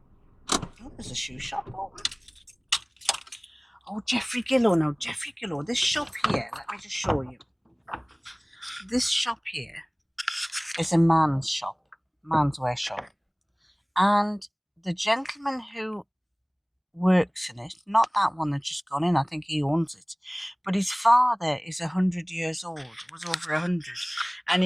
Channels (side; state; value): both; identical; correlation 1.00